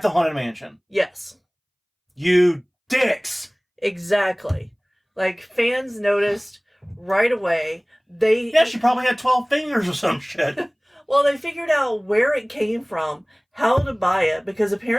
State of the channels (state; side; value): identical; both; correlation 1.00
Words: the Haunted Mansion. Yes. You dicks! Exactly. Like, fans noticed right away. She probably had 12 fingers or some shit. Well, they figured out where it came from, how to buy it, because